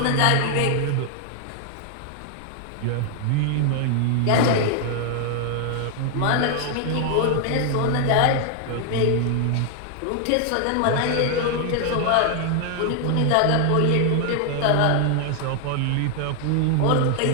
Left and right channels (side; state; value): both; different; correlation 0.00